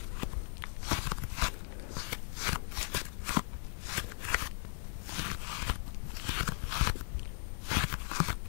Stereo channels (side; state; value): right; silent; digital silence